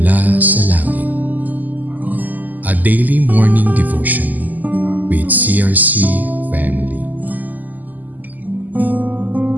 sa langit. A daily morning devotion with CRC Family.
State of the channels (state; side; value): late; left; 0.083 ms